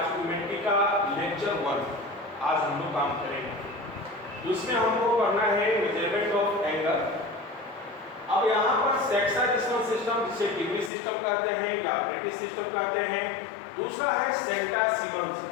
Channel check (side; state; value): right; drops out; at 10.9 s